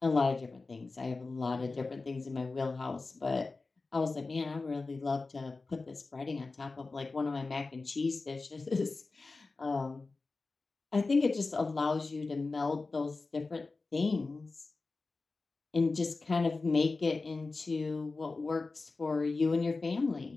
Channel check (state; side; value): quieter; right; 3.7 dB